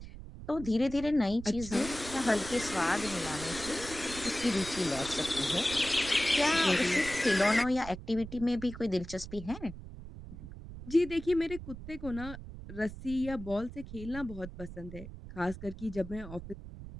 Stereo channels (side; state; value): right; noise; rumble, 12 dB below the sound